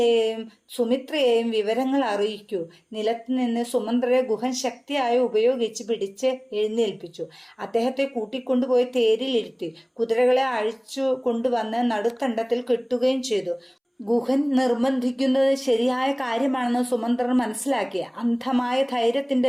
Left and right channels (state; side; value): identical; both; correlation 1.00